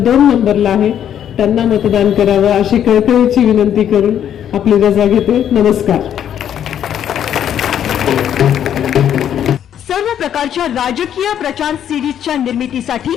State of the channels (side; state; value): right; quieter; 9.8 dB